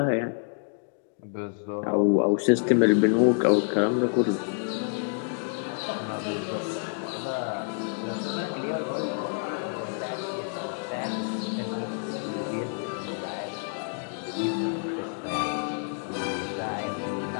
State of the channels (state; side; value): silent; right; 59 dB below the other